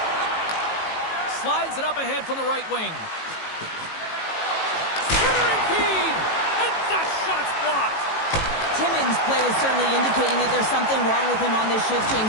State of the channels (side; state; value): right; late; 18 ms